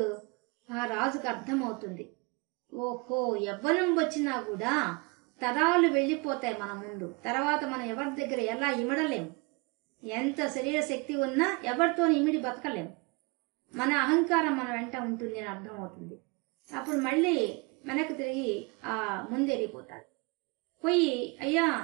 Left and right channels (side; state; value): left; quieter; 29.0 dB